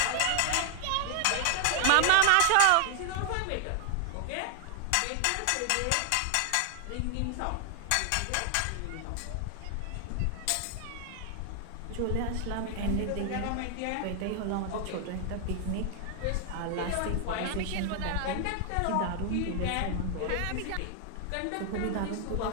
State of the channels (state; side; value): different; both; correlation 0.00